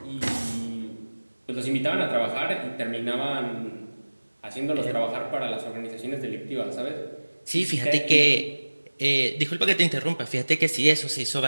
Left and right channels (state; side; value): inverted; both; correlation -1.00